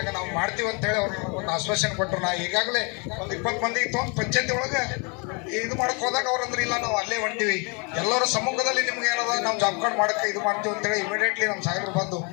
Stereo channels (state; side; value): quieter; right; 33.4 dB